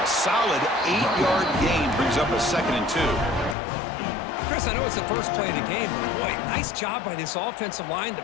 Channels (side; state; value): right; drops out; at 3.6 s